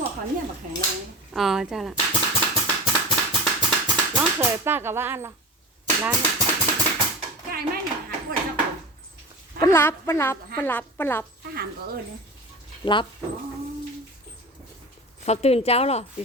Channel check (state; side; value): normal; both; correlation 0.31